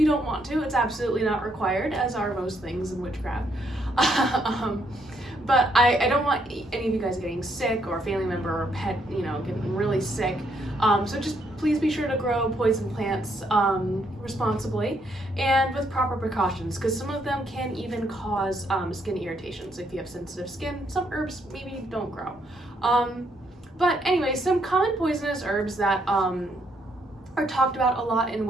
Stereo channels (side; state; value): both; normal; correlation 0.73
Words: don't want to. It's absolutely not required, as are most things in witchcraft. But I don't want any of you guys getting sick or a family member or pet, getting really sick. So just please be sure to grow poison plants responsibly and with proper precautions, because some of them can even cause skin irritations. If you have sensitive skin, some herbs maybe don't grow. But anyway, some common poisonous herbs that are talked about a lot in